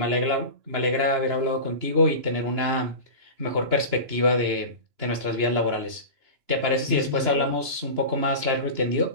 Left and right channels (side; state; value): left; late; 2.9 ms